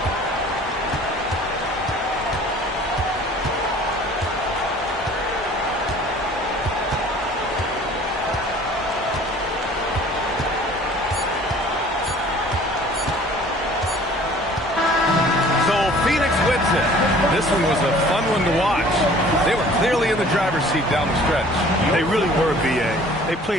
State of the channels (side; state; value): both; normal; correlation 0.50